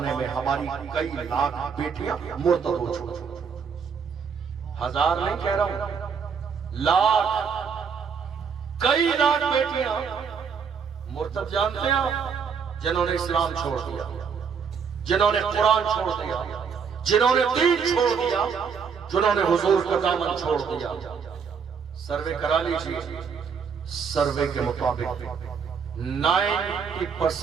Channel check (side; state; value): left; quieter; 6.4 dB